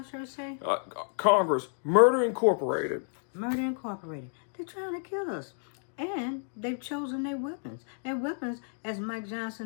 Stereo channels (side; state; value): right; silent; digital silence